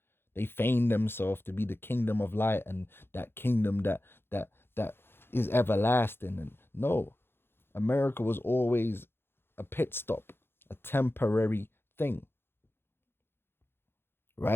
They feigned themselves to be the kingdom of light and that kingdom that is everlasting. And no, America was always a pit stop, a temporary thing,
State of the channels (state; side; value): late; right; 0.11 ms